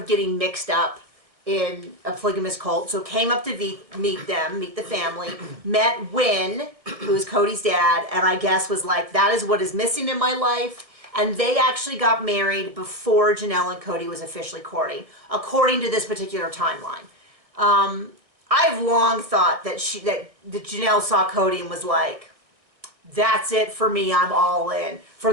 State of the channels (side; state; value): left; late; 1.6 ms